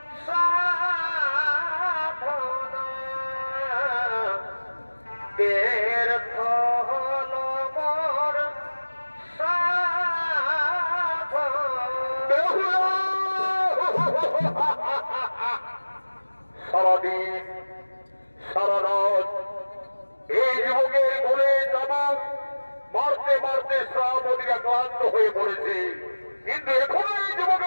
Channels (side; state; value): both; inverted; correlation -1.00